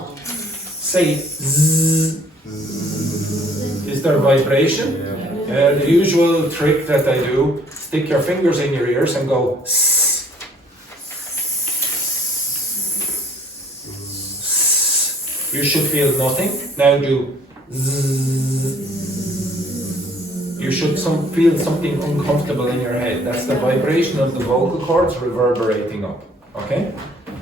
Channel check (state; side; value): normal; both; correlation 0.58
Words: Say z. Is there vibration? The usual trick that I do, stick your fingers in your ears and go s. You should feel nothing. Now do z. You should feel something uncomfortable in your head. That's the vibration of the vocal cords reverberating up. Okay?